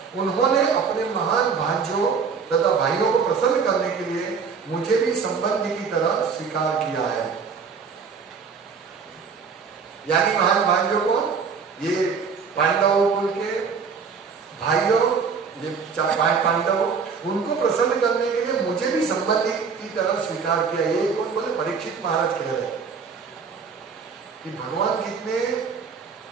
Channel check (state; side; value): quieter; left; 5.7 dB